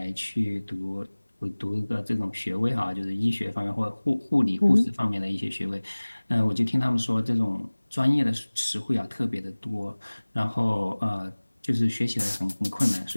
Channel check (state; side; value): inverted; both; correlation -1.00